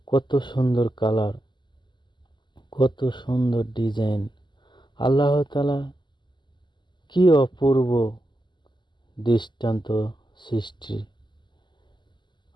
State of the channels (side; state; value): right; late; 0.22 ms